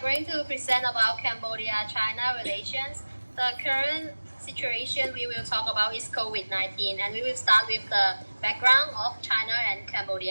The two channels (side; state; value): both; inverted; correlation -1.00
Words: going to present about Cambodia-China relations. The current situation we will talk about is COVID-19, and we will start with the background of China and